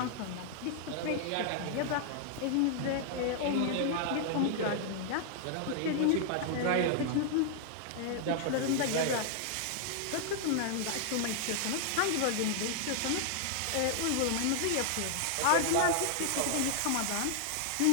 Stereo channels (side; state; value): both; different; correlation 0.00